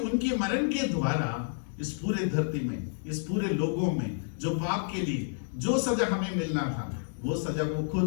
उनके मरण के द्वारा इस पूरे धरती में, इस पूरे लोगों में जो पाप के लिए जो सजा हमें मिलना था वो सजा वो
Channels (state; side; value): silent; right; digital silence